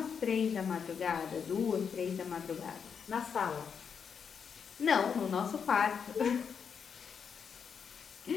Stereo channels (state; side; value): quieter; right; 6.7 dB